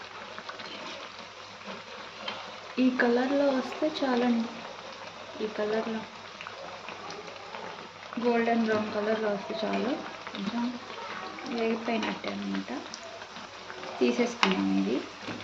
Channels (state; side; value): identical; both; correlation 1.00